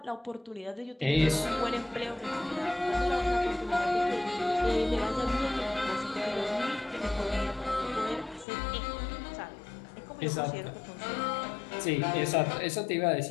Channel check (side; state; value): right; drops out; at 8.5 s